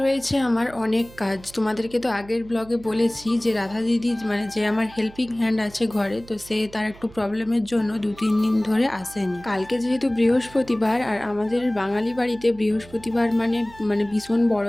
রয়েছে আমার অনেক কাজ। তোমাদেরকে তো আগের ব্লগে বলেছি যে রাধা দিদি মানে যে আমার হেল্পিং হ্যান্ড আছে ঘরে, তো সে তার একটু প্রবলেমের জন্য 2-3 দিন ধরে আসেনি। কালকে যেহেতু বৃহস্পতিবার আর আমাদের বাঙালি বাড়িতে বৃহস্পতিবার মানে মানে ভীষণ বড়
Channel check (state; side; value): noise; right; hum, 21 dB below the sound